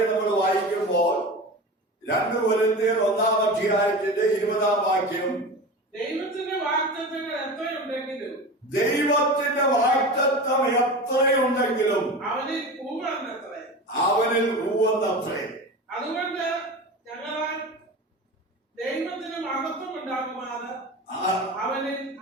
നമ്മൾ വായിക്കുമ്പോൾ 2 കൊരിന്ത്യർ 1-ാം അധ്യായത്തിന്റെ 20-ാം വാക്യം, ദൈവത്തിന്റെ വാഗ്ദത്തങ്ങൾ എത്രയുണ്ടെങ്കിലും അവനിൽ ഊവെന്നത്രേ. അതുകൊണ്ട് ഞങ്ങളാൽ ദൈവത്തിന് മഹത്വം ഉണ്ടാകുമാറ് അവനിൽ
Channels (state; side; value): normal; both; correlation 0.30